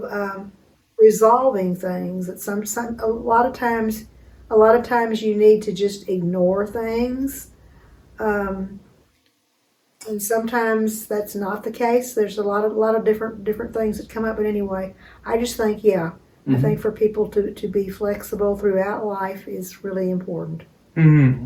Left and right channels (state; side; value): identical; both; correlation 1.00